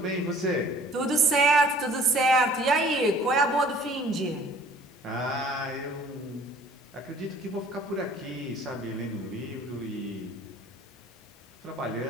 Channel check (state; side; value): normal; both; correlation 0.52